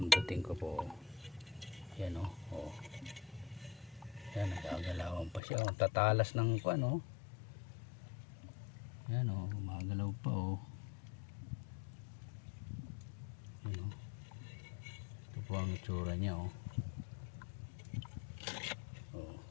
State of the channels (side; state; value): right; drops out; at 5.4 s